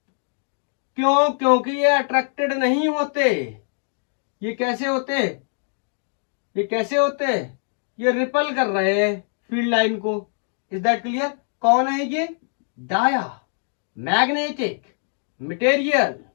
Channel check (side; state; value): right; silent; 61 dB below the other